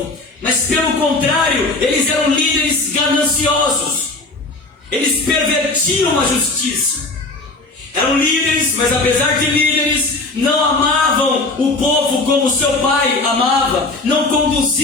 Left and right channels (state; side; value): quieter; right; 3.2 dB